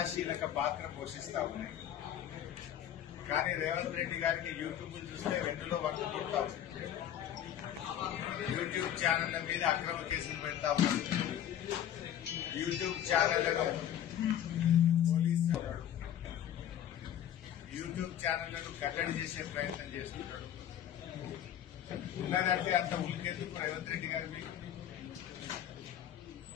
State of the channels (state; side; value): quieter; right; 10.5 dB